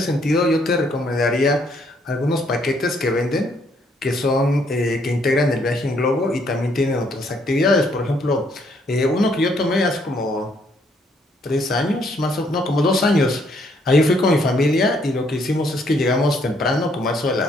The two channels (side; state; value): both; normal; correlation 0.69